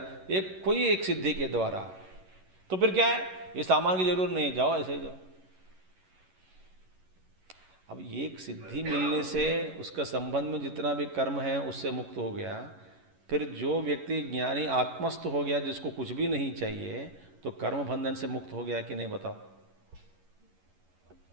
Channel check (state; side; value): late; left; 11 ms